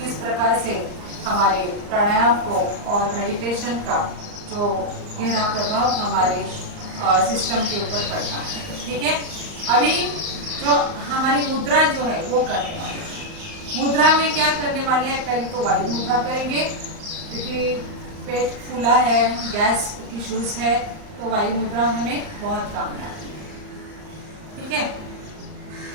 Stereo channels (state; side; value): late; left; 39 ms